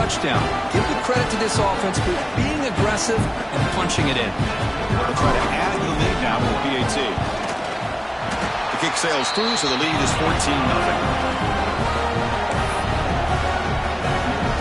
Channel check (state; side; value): identical; both; correlation 1.00